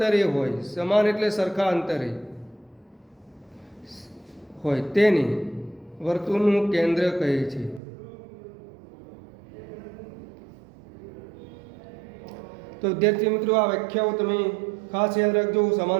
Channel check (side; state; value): left; drops out; at 7.8 s